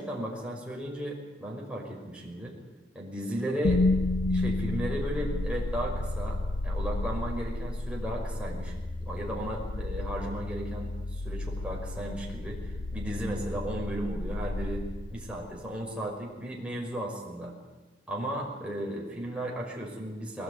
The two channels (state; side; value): normal; both; correlation 0.76